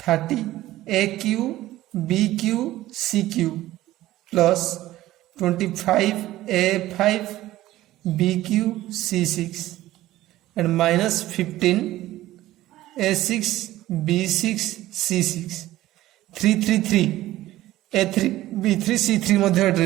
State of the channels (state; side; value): quieter; left; 15.5 dB